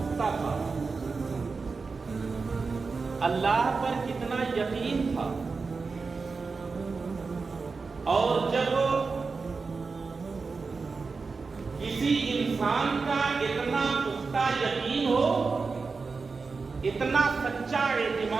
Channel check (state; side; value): quieter; left; 4.5 dB